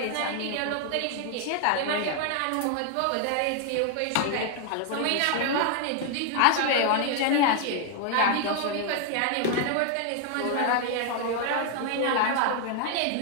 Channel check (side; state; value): both; different; correlation 0.00